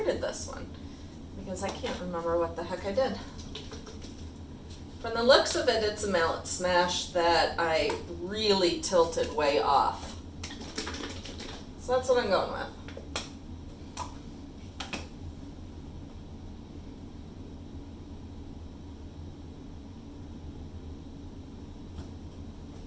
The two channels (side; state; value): both; identical; correlation 1.00